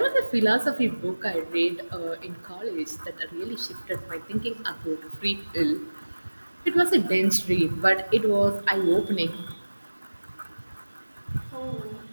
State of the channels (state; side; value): inverted; both; correlation -1.00